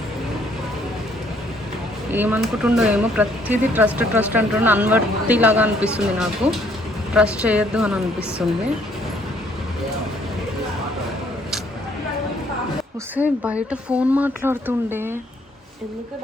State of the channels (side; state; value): both; normal; correlation 0.65